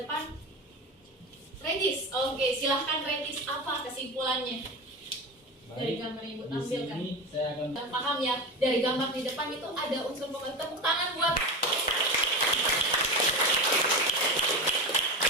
Regis. Oke, silahkan Regis, apa kesimpulannya dari gambar yang Ibu Di tampilkan? sini saya akan Paham ya, dari gambar di depan itu ada unsur pembentuk. Tepuk tangan buat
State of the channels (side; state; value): both; normal; correlation 0.23